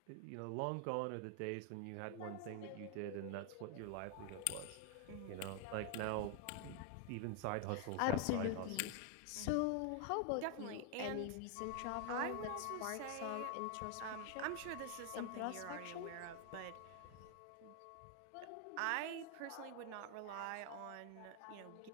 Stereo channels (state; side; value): different; both; correlation 0.01